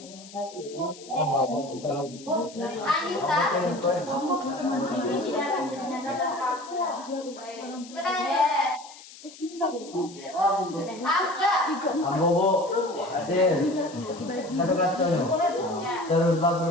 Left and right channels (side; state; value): left; noise; hiss, 18 dB below the sound